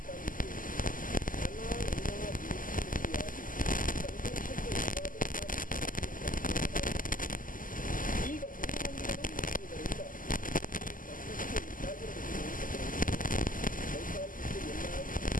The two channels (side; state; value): right; late; 0.40 ms